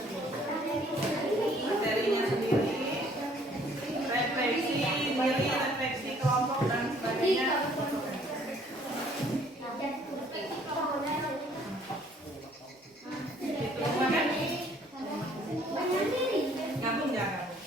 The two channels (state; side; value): normal; both; correlation 0.60